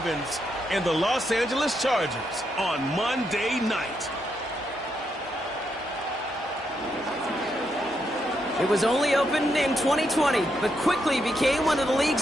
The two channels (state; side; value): normal; both; correlation 0.80